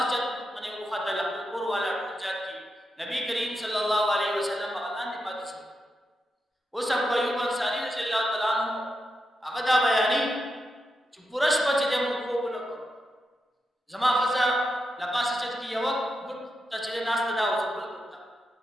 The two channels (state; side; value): normal; both; correlation 0.86